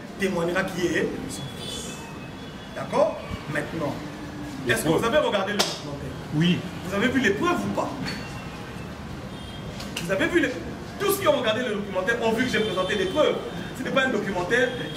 témoignera qui est son Fils. D'accord? Maintenant, est-ce que vous avez regardé le documentaire? Oui. Vous avez vu les preuves ou pas? Vous avez vu les... Tous ceux qui ont regardé le documentaire ont vu que j'ai présenté des preuves. Ce n'est pas un documentaire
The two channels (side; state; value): both; identical; correlation 1.00